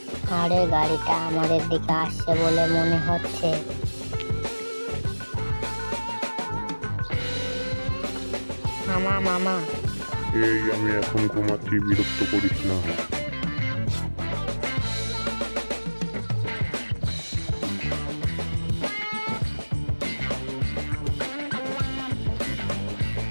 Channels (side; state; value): both; inverted; correlation -1.00